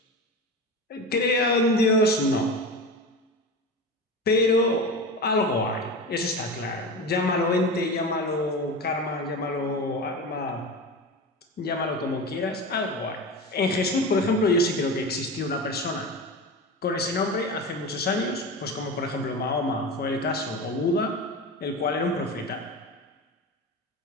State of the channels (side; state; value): both; normal; correlation 0.26